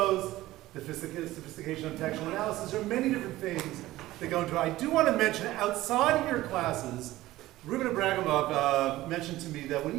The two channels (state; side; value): quieter; left; 16.6 dB